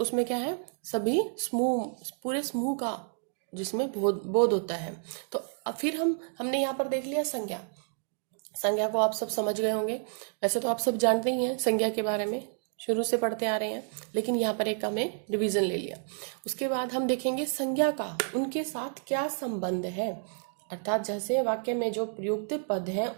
उसमें क्या है, सभी समूह, पूरे समूह का जिसमें बोध होता है। तो अब फिर हमने यहाँ पर देख लिया संज्ञा। संज्ञा को आप सब समझ गए होंगे, वैसे तो आप सब जानते ही हैं संज्ञा के बारे में, शुरू से पढ़ते आ रहे हैं, लेकिन यहाँ पर एक हमें रिवीजन ले लिया। उसके बाद हम देखेंगे संज्ञा का उनके साथ क्या संबंध है, अर्थात जैसे वाक्य में जो प्रयुक्त पद है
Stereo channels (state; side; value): silent; left; 58 dB below the other